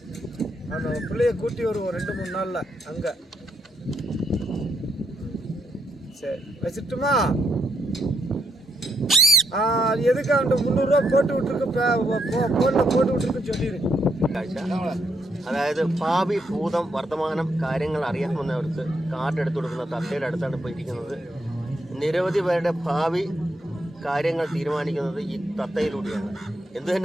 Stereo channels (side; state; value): both; normal; correlation 0.78